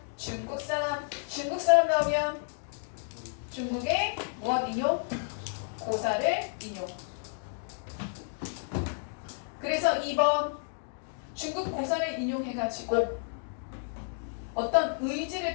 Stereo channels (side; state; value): right; silent; digital silence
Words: 중국 사람. 중국 사람 나오면 중국의 무엇 인용? 고사를 인용. 그래서 2번 중국 고사를 인용해가지고 어떤 의지를